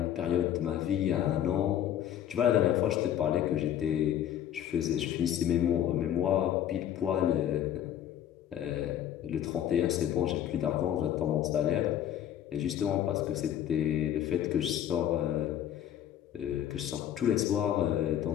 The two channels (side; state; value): right; quieter; 10.7 dB